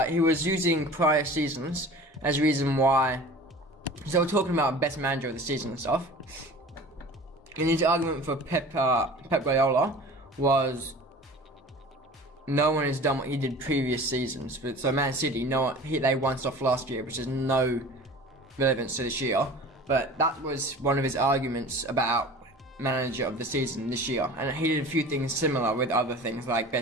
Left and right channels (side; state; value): both; normal; correlation 0.41